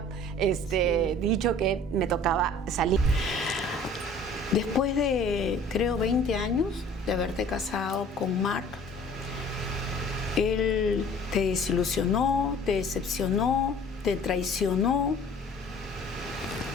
dicho que me tocaba salir. Después de, creo, 20 años de haberte casado con Mark, él te desilusionó, te decepcionó, te traicionó.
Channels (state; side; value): normal; both; correlation 0.49